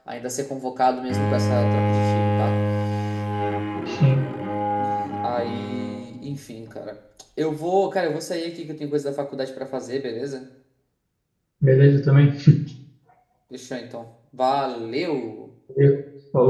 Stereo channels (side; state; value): both; identical; correlation 1.00